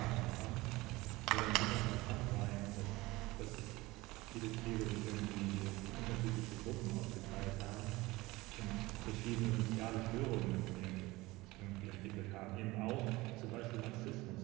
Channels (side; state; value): left; quieter; 20.6 dB